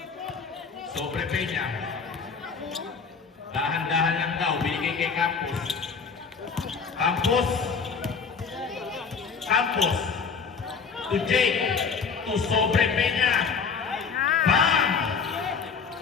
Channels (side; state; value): right; quieter; 5.5 dB